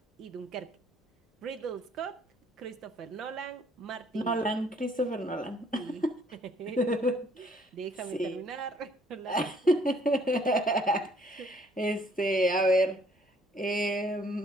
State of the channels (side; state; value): both; normal; correlation 0.63